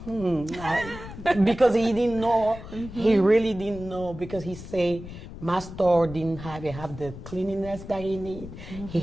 because he didn't know, he really didn't know, because he say my store didn't have the cleanliness that he need. He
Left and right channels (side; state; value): left; noise; rumble, 13 dB below the sound